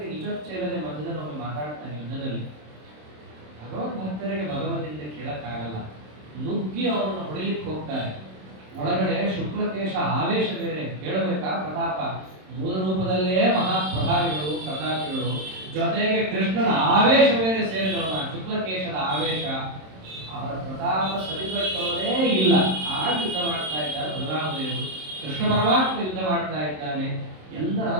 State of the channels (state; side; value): late; left; 27 ms